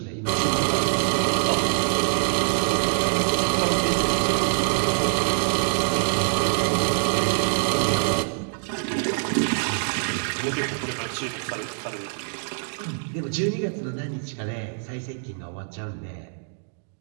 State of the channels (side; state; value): left; silent; digital silence